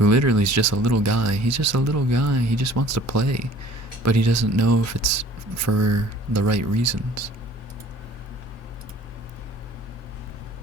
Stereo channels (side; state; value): both; normal; correlation 0.51